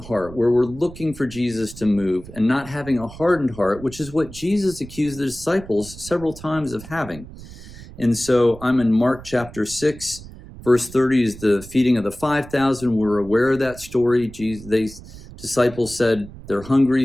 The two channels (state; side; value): noise; right; rumble, 16 dB below the sound